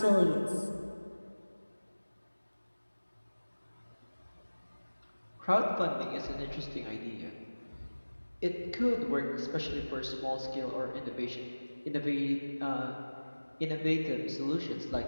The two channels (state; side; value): inverted; both; correlation -1.00